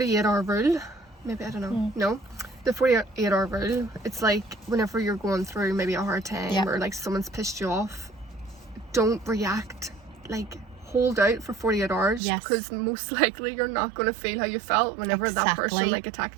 rule. Maybe, I don't know. No, the 48-hour rule. It's like whenever you're going through maybe a hard time or like someone's pissed you off, don't react. Like, hold out for 48 hours, because most likely you're not going to feel how you felt whenever that person like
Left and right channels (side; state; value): left; drops out; at 12.2 s